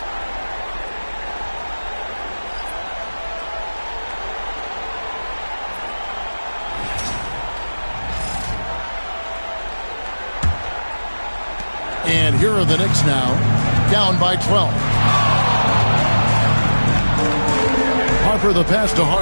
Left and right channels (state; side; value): inverted; both; correlation -1.00